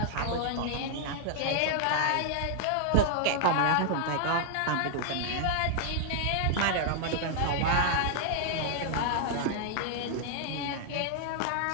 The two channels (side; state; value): both; different; correlation -0.01